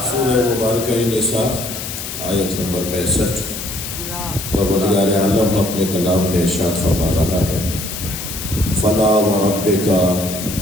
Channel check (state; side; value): noise; left; hiss, 7 dB below the sound